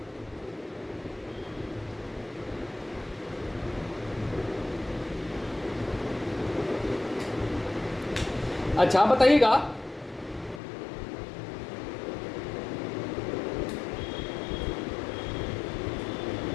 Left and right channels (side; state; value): right; drops out; at 10.6 s